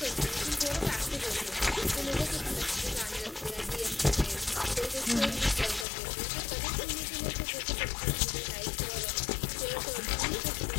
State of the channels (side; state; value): right; drops out; at 5.9 s